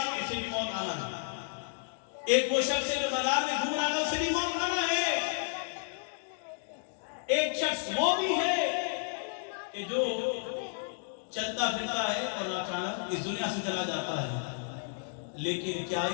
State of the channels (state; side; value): silent; right; digital silence